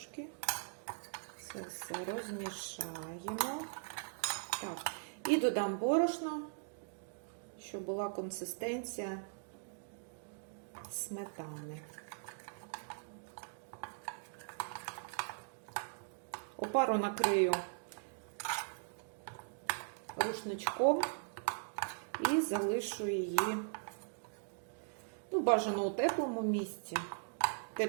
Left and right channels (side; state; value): left; silent; digital silence